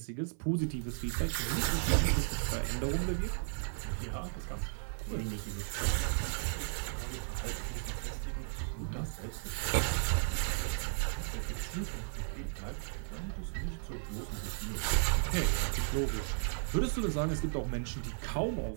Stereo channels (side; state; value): left; silent; 55 dB below the other